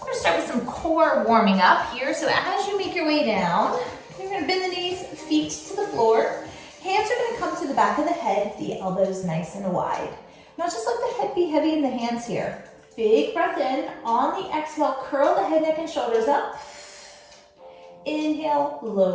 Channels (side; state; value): both; identical; correlation 1.00